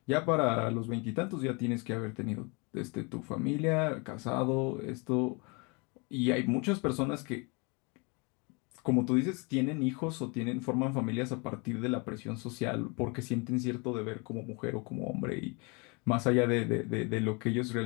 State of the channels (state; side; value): quieter; right; 30.9 dB